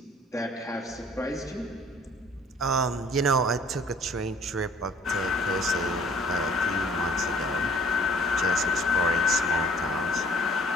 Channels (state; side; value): normal; both; correlation 0.56